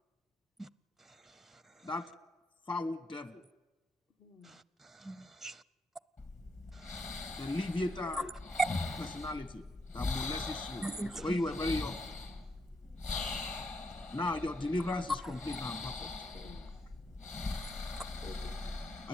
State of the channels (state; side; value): normal; both; correlation 0.77